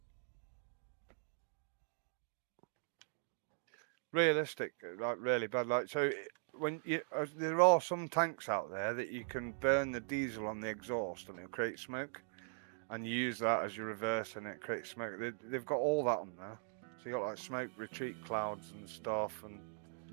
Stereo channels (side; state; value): left; silent; digital silence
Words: Realistic, like really bad. Like so, when you there are some tanks out there that you can burn the diesel on the exhaust and it'll create smoke, and you use that as your reverse and it creates smoke. They've got all that on there, so you got like smoke retreat clouds and stuff, and